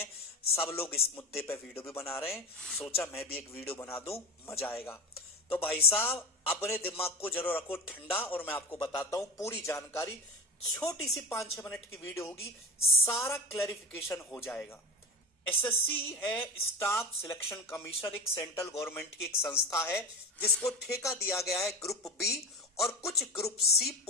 सब लोग इस मुद्दे पे वीडियो भी बना रहे हैं। सोचा मैं भी एक वीडियो बना दूं, मजा आएगा। तो भाई साहब, अपने दिमाग को जरूर रखो ठंडा और मैं आपको बताता हूं पूरी जानकारी। छोटी सी 5-6 मिनट की वीडियो होगी, सारा क्लैरिफिकेशन हो जाएगा। एसएससी है स्टाफ सिलेक्शन कमीशन, एक सेंट्रल गवर्नमेंट की एक संस्था है जिसको ठेका दिया गया है ग्रुप बी और कुछ ग्रुप सी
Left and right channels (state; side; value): normal; both; correlation 0.27